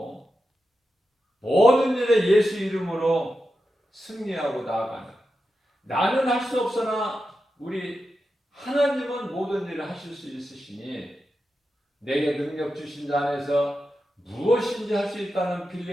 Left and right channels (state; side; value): normal; both; correlation 0.90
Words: 모든 일에 예수 이름으로 승리하고 나아가는, 나는 할 수 없으나 우리 하나님은 모든 일을 하실 수 있으시니 내게 능력 주신 자 안에서 무엇인지 할 수 있다는